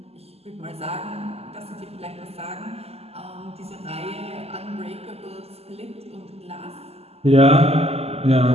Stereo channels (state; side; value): late; left; 0.29 ms